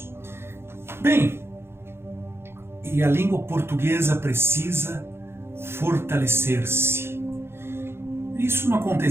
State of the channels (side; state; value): left; late; 0.12 ms